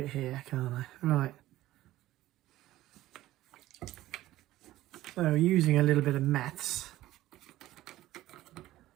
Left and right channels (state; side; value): quieter; left; 15.5 dB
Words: it here, can't I? Right. So using a little bit of meths,